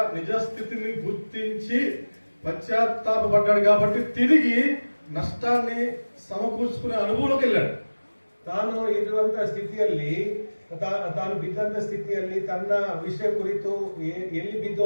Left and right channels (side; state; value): both; inverted; correlation -1.00